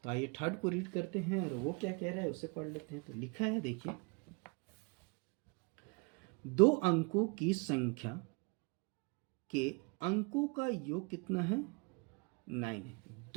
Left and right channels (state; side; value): quieter; left; 31.4 dB